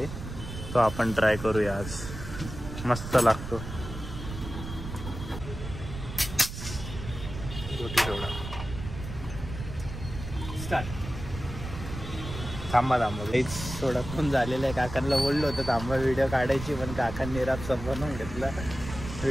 तो आपण ट्राय करूया आज. मस्त लागतो. रोटी सोडा स्टार्ट. थांबा हेच सोडा पण झालेलं आहे. काकांना बोललो होतं थांबा व्हिडिओ काढायची. पण काकांनी रात बनवून घेतला.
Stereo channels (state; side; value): noise; right; rumble, 9 dB below the sound